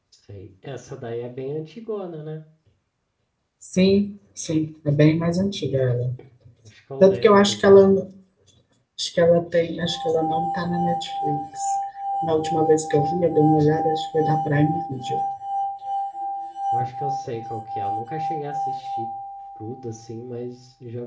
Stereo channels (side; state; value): both; identical; correlation 1.00